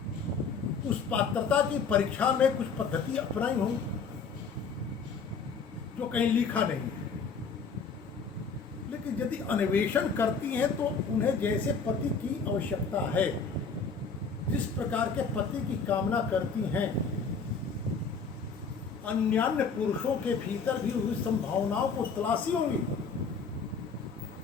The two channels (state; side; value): quieter; right; 5.2 dB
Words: उस पात्रता की परीक्षा में कुछ पद्धति अपनाई होंगी जो कहीं लिखा नहीं है, लेकिन यदि अन्वेषण करती हैं तो उन्हें जैसे पति की आवश्यकता है, जिस प्रकार के पति की कामना करती हैं, अन्यान्य पुरुषों के भीतर भी उस संभावनाओं को तलाशी होंगी।